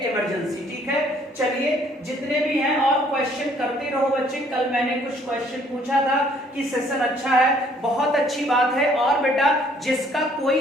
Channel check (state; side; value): normal; both; correlation 0.62